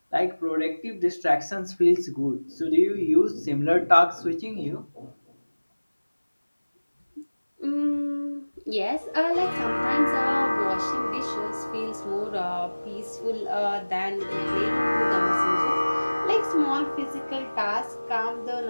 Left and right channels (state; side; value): inverted; both; correlation -1.00